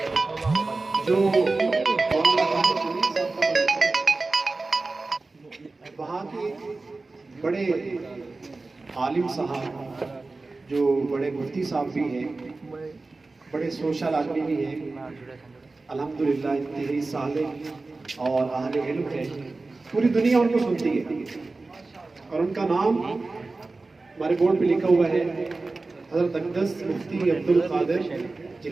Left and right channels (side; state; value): left; quieter; 3.5 dB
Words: جو وہاں کے بڑے عالم صاحب جو بڑے مفتی صاحب بھی ہیں، بڑے سوشل آدمی بھی ہیں، الحمدللہ انتہائی صالح اور اہل علم ہے، پوری دنیا ان کو سنتی ہے، اور ان کا نام ہمارے بورڈ پہ لکھا ہوا ہے حضرت اقدس مفتی عبدالقادر